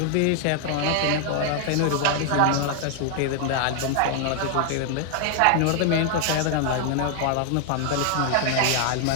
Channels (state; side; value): different; both; correlation 0.00